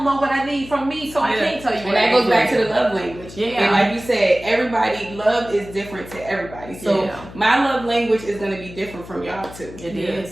know what I need from me, so I can't tell you. And that goes back to the love language. And like you said, love is different to everybody. So my love language is going to be different from y'all too. It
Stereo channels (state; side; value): noise; left; hum, 16 dB below the sound